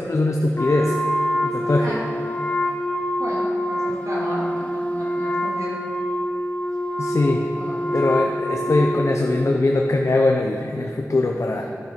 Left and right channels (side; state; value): both; normal; correlation 0.92